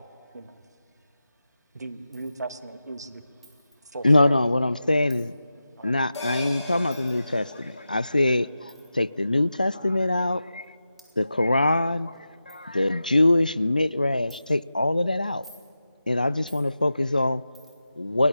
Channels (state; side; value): inverted; both; correlation -0.92